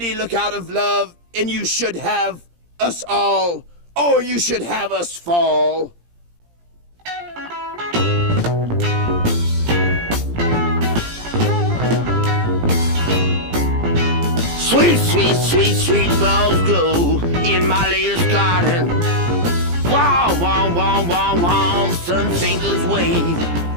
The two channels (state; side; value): late; left; 17 ms